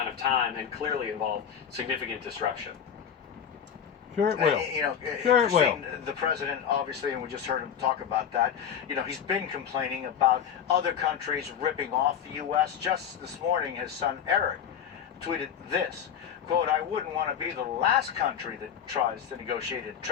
of time and clearly involve significant disruption. Sure it will. Sure it will. The president, obviously, and we just heard him talk about that, he's been complaining about other countries ripping off the U.S. Just this morning, his son Eric tweeted this, quote, "I wouldn't want to be the last country that tries to negotiate a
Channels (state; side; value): quieter; right; 8.4 dB